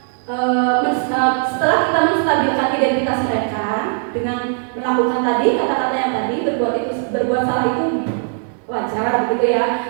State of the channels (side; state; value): left; silent; 55 dB below the other